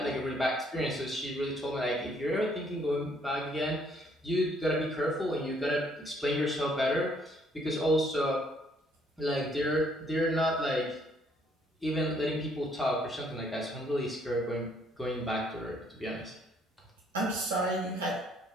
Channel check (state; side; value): normal; both; correlation 0.66